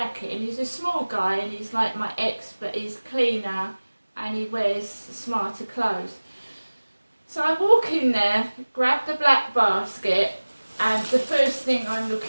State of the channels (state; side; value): inverted; both; correlation -1.00